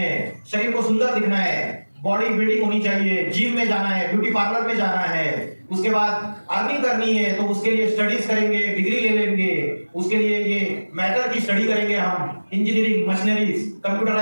शरीर को सुंदर दिखना है, बॉडी बिल्डिंग होनी चाहिए, जिम में जाना है, ब्यूटी पार्लर में जाना है, उसके बाद अर्निंग करनी है तो उसके लिए स्टडीज करेंगे, डिग्री ले लेंगे, उसके लिए ये मैटर की स्टडी करेंगे हम, engineering, machineries,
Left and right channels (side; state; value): both; inverted; correlation -1.00